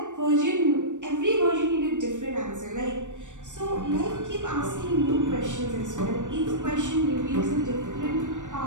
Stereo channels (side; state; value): left; late; 0.85 ms